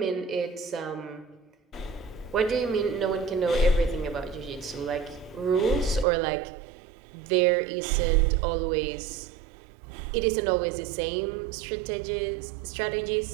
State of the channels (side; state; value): left; drops out; at 6.1 s